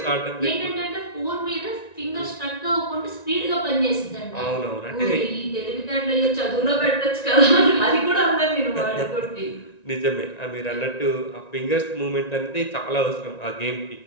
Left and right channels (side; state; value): right; late; 1.9 ms